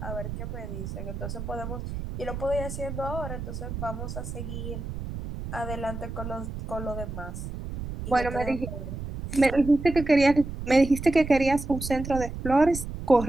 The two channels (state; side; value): noise; right; rumble, 7 dB below the sound